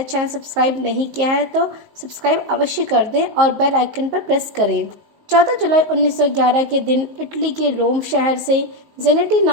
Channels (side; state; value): left; late; 19 ms